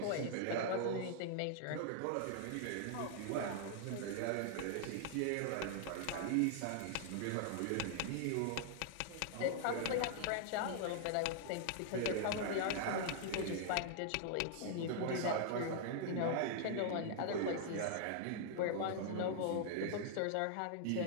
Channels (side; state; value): both; different; correlation -0.01